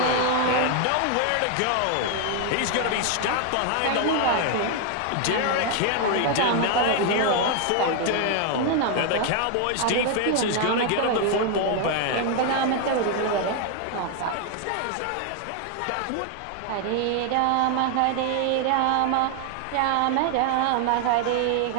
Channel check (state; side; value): different; both; correlation 0.00